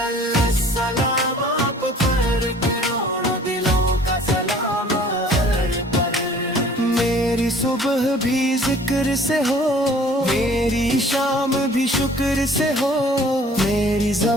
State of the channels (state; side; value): normal; both; correlation 0.52